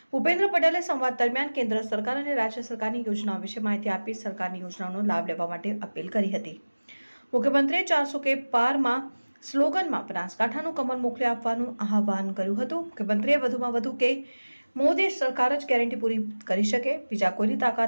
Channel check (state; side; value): inverted; both; correlation -1.00